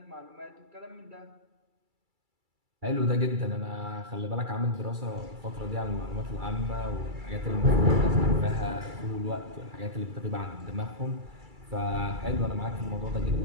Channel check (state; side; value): late; left; 2.3 ms